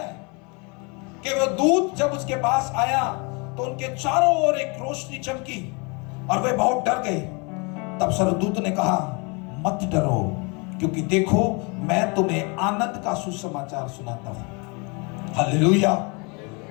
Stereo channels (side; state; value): right; quieter; 31.3 dB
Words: है कि वह दूत जब उसके पास आया तो उनके चारों ओर एक रोशनी चमकी और वे बहुत डर गए। तब स्वर्गदूत ने कहा, मत डरो, क्योंकि देखो मैं तुम्हें आनंद का सुसमाचार सुनाता हूं। हालेलुया।